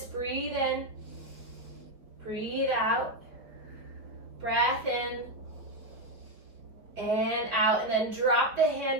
Breathe in. Breathe out, breath in, and out, and then drop the hand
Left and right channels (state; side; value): late; left; 4.7 ms